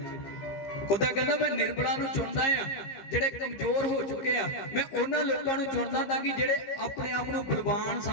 खुदा कहता मैं निर्बलां नूं चुनदा आ, जेड़े कमजोर हो चुके आ, मैं उन्हां लोकां नूं चुनदा ताकि जेड़े अपने आप नूं बलवान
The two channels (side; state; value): right; late; 15 ms